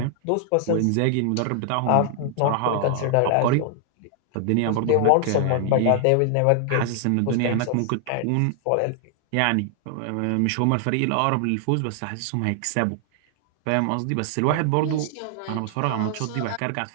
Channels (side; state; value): both; different; correlation 0.00